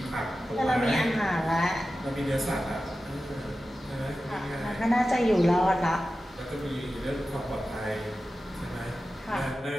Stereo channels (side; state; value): both; normal; correlation 0.93